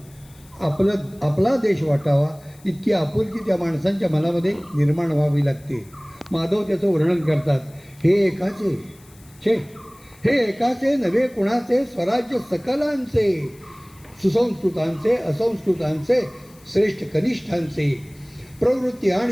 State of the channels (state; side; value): noise; left; hiss, 27 dB below the sound